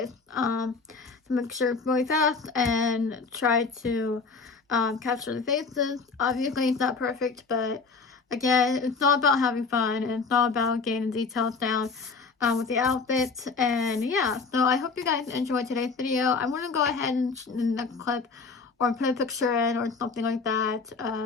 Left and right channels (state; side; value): quieter; right; 4.5 dB